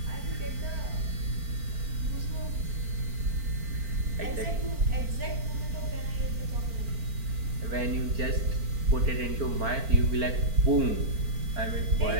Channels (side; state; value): left; late; 4.4 ms